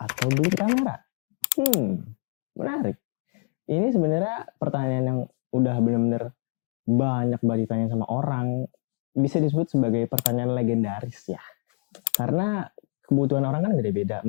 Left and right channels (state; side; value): quieter; right; 37.9 dB